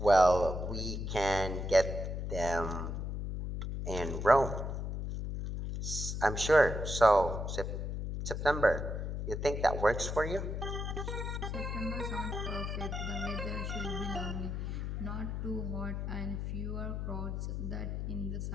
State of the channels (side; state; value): left; noise; hum, 3 dB below the sound